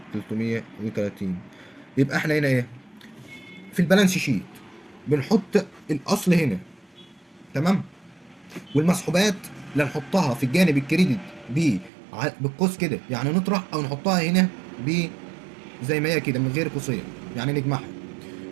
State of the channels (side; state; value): left; drops out; at 11.9 s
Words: يبقى احنا هنا ايه؟ في البالانس شيت بنحط الاصل هنا، تمام، والمسحوبات لا نحطها في الجانب الكريدت بالقوس كده يعني نطرح، او نحطها هنا ب زي ما هي كده من غير قوسين يعني نجمعها.